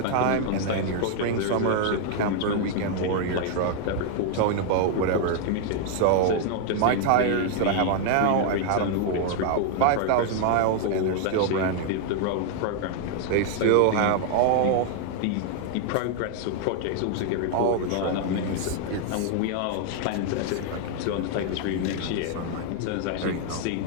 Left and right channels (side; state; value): both; different; correlation 0.00